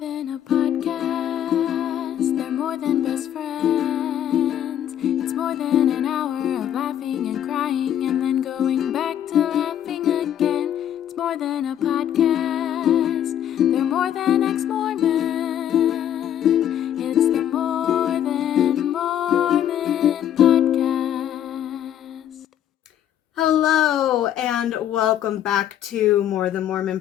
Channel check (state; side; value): quieter; right; 10.5 dB